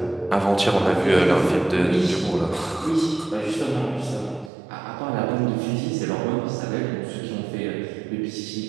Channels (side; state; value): left; drops out; at 4.5 s